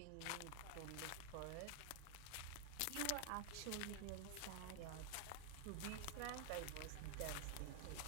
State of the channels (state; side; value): different; both; correlation 0.00